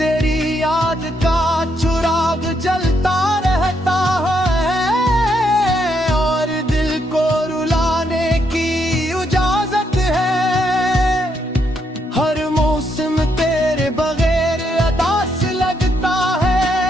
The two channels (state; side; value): normal; both; correlation 0.76